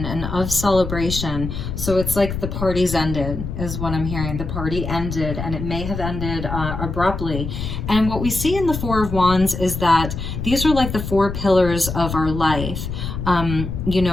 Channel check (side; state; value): left; noise; rumble, 6 dB below the sound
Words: and of celebration. So it's like the party's ended, is what I'm hearing. The party ended, and it may have ended abruptly. And what we see in the Four of Wands is that these are like the four pillars of our life. You